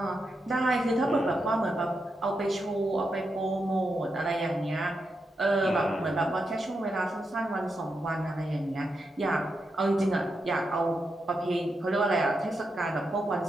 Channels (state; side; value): normal; both; correlation 0.85